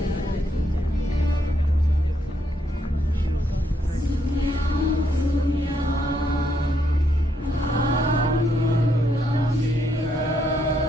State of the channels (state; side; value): normal; both; correlation 0.75